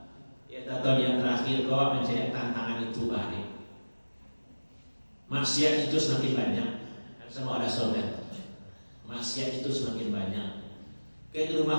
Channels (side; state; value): both; inverted; correlation -1.00